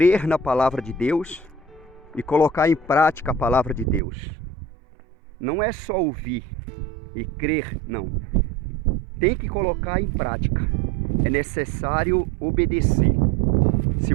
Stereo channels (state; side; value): drops out; left; at 4.0 s